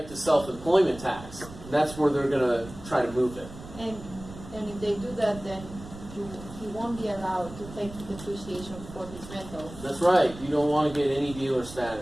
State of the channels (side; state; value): right; noise; rumble, 15 dB below the sound